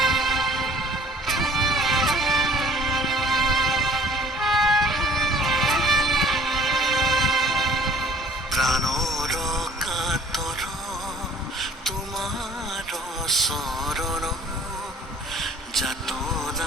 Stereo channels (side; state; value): both; normal; correlation 0.53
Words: প্রাণর কাতর তোমার শরণ